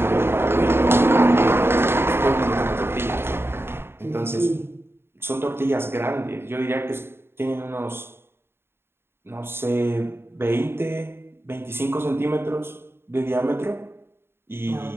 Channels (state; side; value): late; left; 0.11 ms